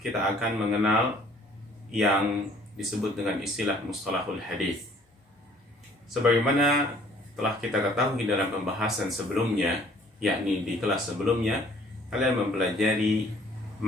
akan mengenal yang disebut dengan istilah mustalahul hadis. Sebagaimana telah kita ketahui dalam pembahasan sebelumnya, yakni di kelas sebelumnya, kalian mempelajari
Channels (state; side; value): normal; both; correlation 0.57